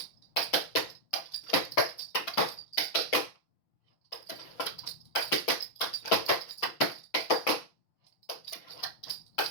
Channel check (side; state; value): right; late; 6.0 ms